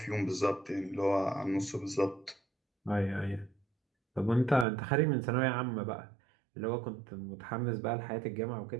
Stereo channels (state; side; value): drops out; left; at 4.7 s